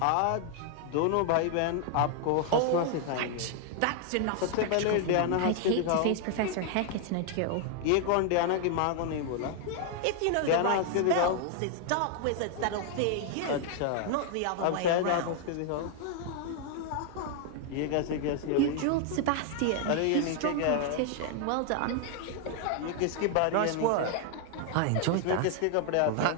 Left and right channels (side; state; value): both; different; correlation 0.00